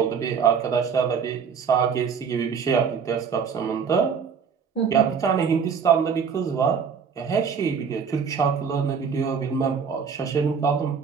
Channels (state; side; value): quieter; left; 6.5 dB